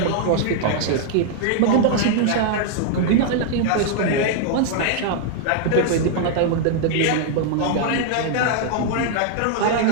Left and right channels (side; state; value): both; different; correlation -0.01